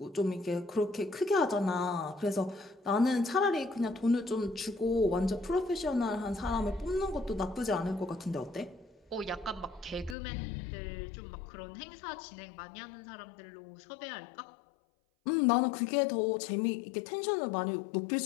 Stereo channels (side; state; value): right; drops out; at 10.2 s